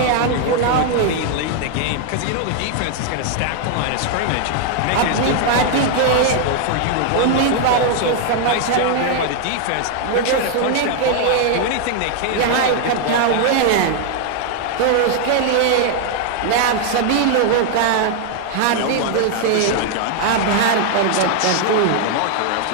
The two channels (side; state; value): both; different; correlation 0.00